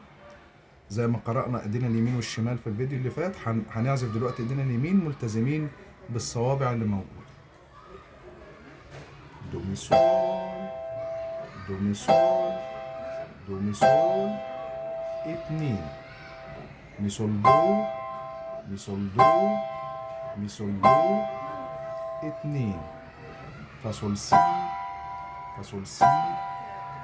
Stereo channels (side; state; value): both; identical; correlation 1.00